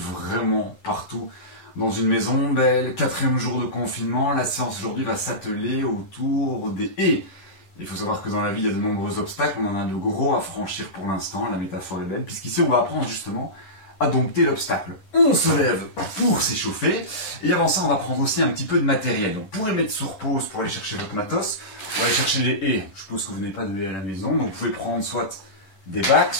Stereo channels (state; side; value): late; right; 10 ms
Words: partout dans une maison belle. 4e jour de confinement, la séance aujourd'hui va s'atteler autour des haies. Il faut savoir que dans la vie, il y a de nombreux obstacles, on en a de gros à franchir pour l'instant, la métaphore est belle, puisqu'ici on va apprendre justement à dompter l'obstacle. On se lève pour s'échauffer, et avant ça on va prendre aussi un petit peu de matériel. Donc pour les mettre sur pause, pour aller chercher votre matos, pour aller chercher les haies, je suppose que vous n'avez pas de haies à la maison, donc vous pouvez prendre soit des bacs,